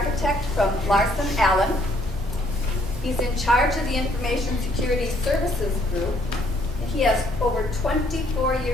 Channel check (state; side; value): normal; both; correlation 0.66